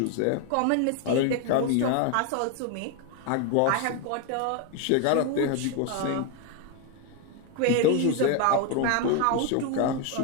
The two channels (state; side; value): different; both; correlation 0.01